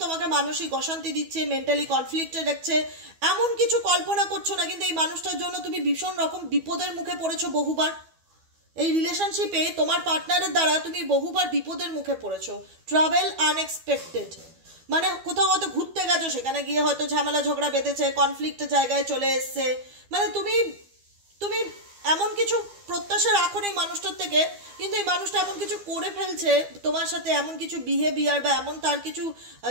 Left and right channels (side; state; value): left; late; 12 ms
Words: তোমাকে মানসিক অশান্তি দিচ্ছে, মেন্টালি কনফ্লিক্টে দেখছে। এমন কিছু কল্পনা করছো না, কিন্তু এই মানুষটার জন্য তুমি ভীষণ রকম বিপদের মুখে পড়েছো বহুবার। এই রিলেশনশিপে তোমার পার্টনারের দ্বারা তুমি বহুবার বিপদের মুখে পড়েছো। ট্রাভেল আনএক্সপেক্টেড, মানে কোথাও হয়তো ঘুরতে গেছো, সেখানে গিয়ে হয়তো ঝামেলা ঝগড়া বেঁধেছে, কনফ্লিক্টের জায়গায় চলে এসছে। মানে তুমি এমন কিছু প্রত্যাশা রাখো না এই মানুষটার থেকে, কিন্তু এই মানুষটা এমন কিছু করে ফেলছে তোমার সাথে, এমন কিছু বিহেভিয়ার বা এমন তার কিছু